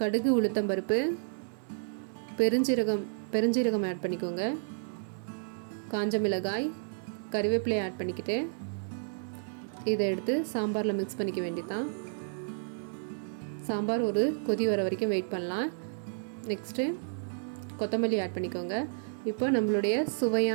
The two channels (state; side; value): silent; left; digital silence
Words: உளுத்தம்பருப்பு, பெருஞ்சீரகம் ஆட் பண்ணிக்கோங்க. காஞ்ச மிளகாய், கறிவேப்பிலை ஆட் பண்ணிக்கிட்டு இதை எடுத்து சாம்பாரில் மிக்ஸ் பண்ணிக்க வேண்டியதான். சாம்பார் ஒரு கொதி வர வரைக்கும் வெயிட் பண்ணலாம். நெக்ஸ்ட்டு கொத்தமல்லி ஆட் பண்ணிக்கோங்க. இப்போ நம்மளுடைய